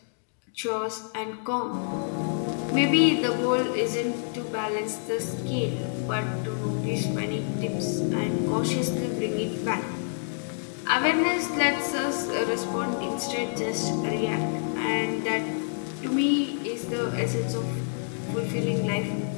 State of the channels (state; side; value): silent; right; digital silence